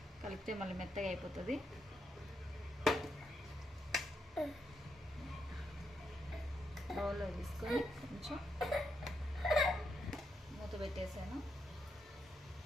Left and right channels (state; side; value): normal; both; correlation 0.81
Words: కలిపితే మళ్ళీ మెత్తగా అయిపోతుంది. బౌల్లో తీసుకొని కొంచెం మూత పెట్టేసాను.